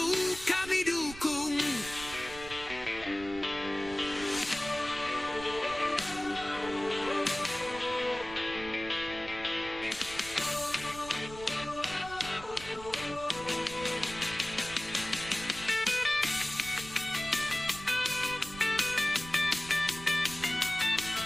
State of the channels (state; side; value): noise; right; rumble, 15 dB below the sound